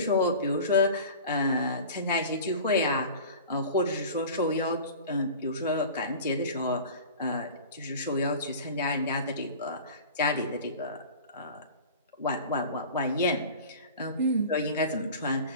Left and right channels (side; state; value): both; inverted; correlation -0.38